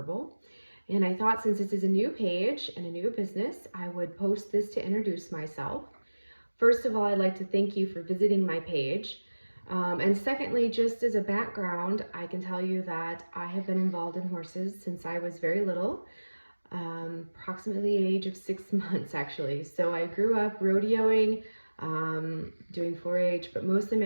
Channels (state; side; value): inverted; both; correlation -1.00